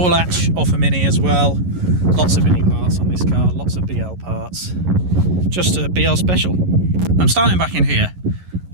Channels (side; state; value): left; late; 11 ms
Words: latch off a Mini as well. Lots of Mini parts on this car, lots of BL parts. Just a BL special. I'm starting back in here.